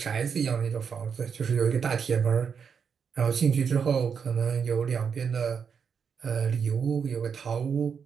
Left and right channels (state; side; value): quieter; left; 6.6 dB